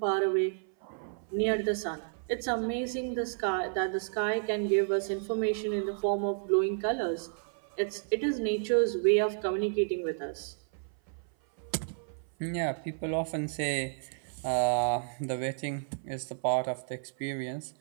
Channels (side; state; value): left; silent; 57 dB below the other